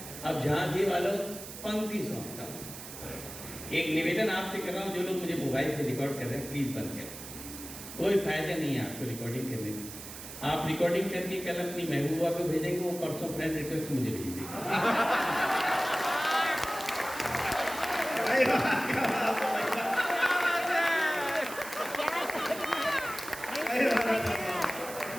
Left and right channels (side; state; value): right; noise; hiss, 12 dB below the sound